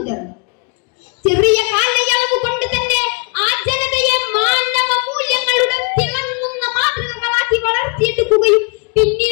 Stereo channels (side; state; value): right; quieter; 34.9 dB